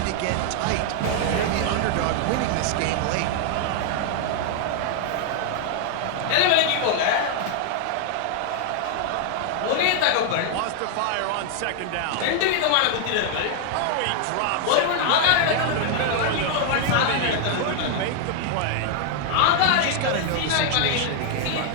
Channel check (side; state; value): both; different; correlation 0.00